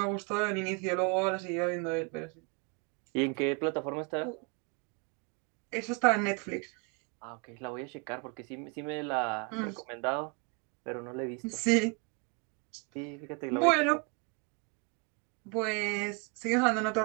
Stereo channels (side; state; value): left; quieter; 33.7 dB